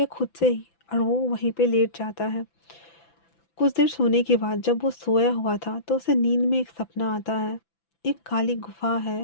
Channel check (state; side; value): late; right; 5.9 ms